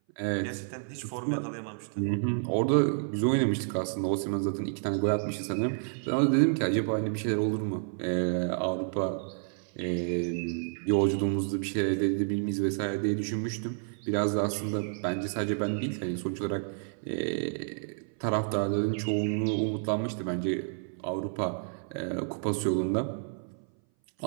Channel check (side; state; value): left; silent; 58 dB below the other